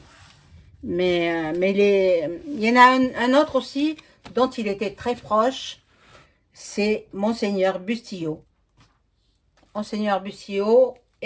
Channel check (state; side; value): identical; both; correlation 1.00